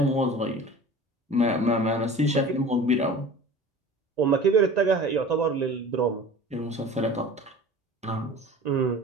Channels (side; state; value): both; normal; correlation 0.40